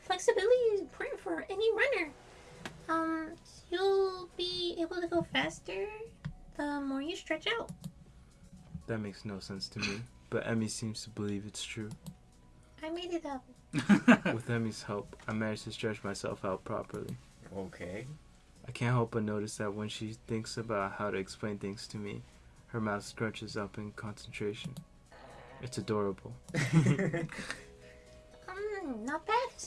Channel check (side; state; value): both; identical; correlation 1.00